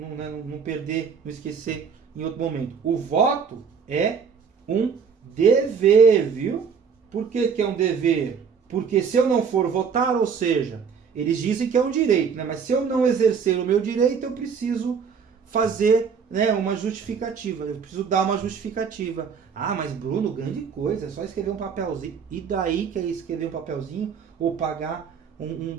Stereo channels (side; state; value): left; quieter; 6.4 dB